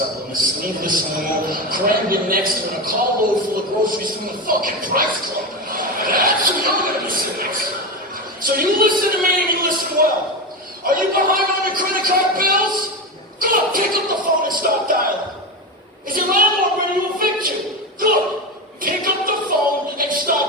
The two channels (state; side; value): normal; both; correlation 0.18